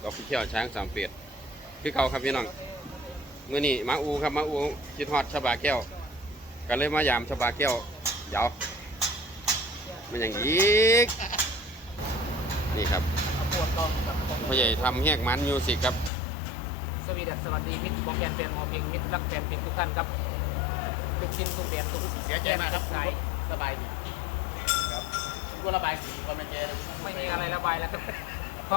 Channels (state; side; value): drops out; right; at 16.1 s